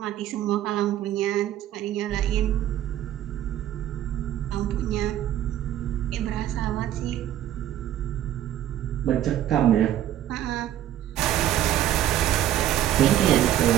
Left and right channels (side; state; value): left; quieter; 12.0 dB